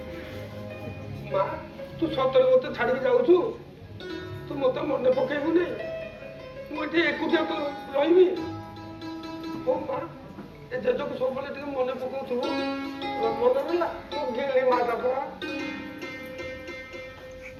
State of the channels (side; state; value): both; identical; correlation 1.00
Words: ମା ତୁ ସତରେ ମତେ ଛାଡ଼ିକି ଯାଉଛୁ? ତୁ ମତେ ମନେ ପକେଇବୁ ନାଇଁ? ମୁଁ ଏଠି ଏକୁଟିଆ ତ ରହିବି। ହଉ ମା ଏ ଜେଜକୁ ସବୁବେଳେ ଟିକେ ମନେ ପକାଉଥିବୁ। ମନେ ରହିଲା ମୁଁ ଗେଲି ମାଟା ପରା।